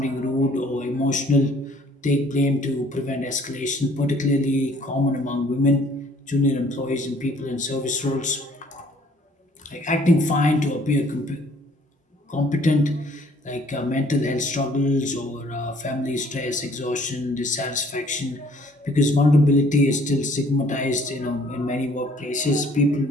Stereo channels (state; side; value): normal; both; correlation 0.59